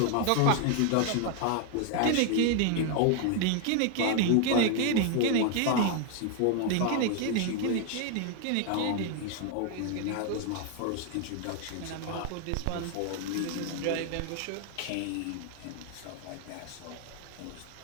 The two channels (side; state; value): both; different; correlation 0.00